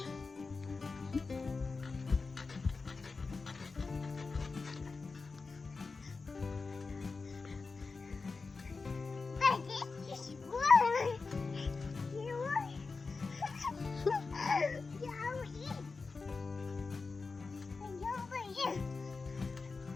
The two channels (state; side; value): quieter; right; 4.3 dB